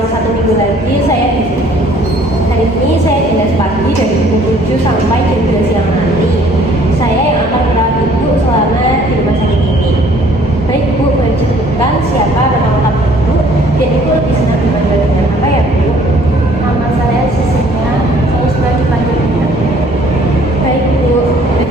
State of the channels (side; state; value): both; normal; correlation 0.58